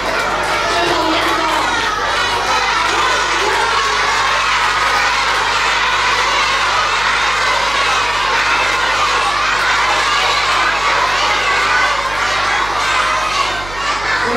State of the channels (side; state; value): right; noise; hum, 14 dB below the sound